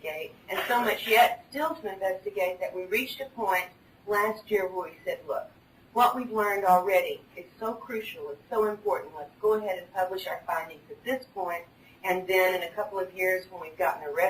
and so much yet still to investigate that we reached a point last year where we said, look, what we've learned already is so crucial, it's so important. Let's go ahead and publish our findings at this point, and then in a couple of years when we've gotten the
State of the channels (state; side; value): identical; both; correlation 1.00